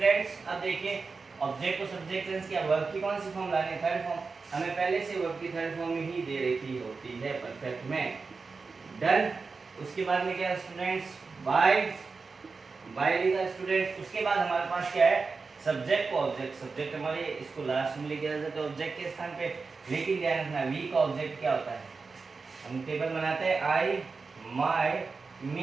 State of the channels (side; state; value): left; quieter; 4.5 dB